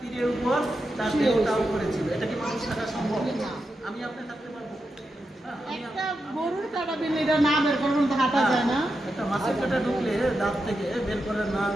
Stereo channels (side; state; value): both; normal; correlation 0.88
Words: উপর তার দেহটাও করেছিল। এটা কি মানুষ থাকা সম্ভব? আমি আপনি থাকতে পারবো? একটা গরুর কাটা বিল এটা না বের করুন তো হাঁটা যায় না। একটা মাছের কাটা ঢুকলে দাঁত থেকে বের করে না